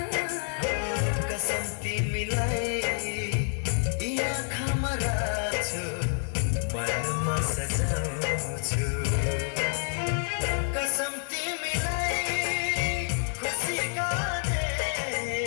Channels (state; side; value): silent; right; 58 dB below the other